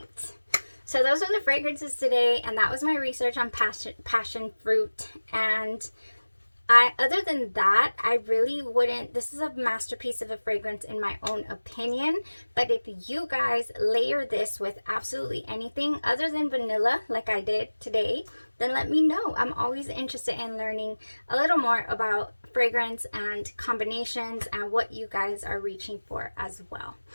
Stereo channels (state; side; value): inverted; both; correlation -1.00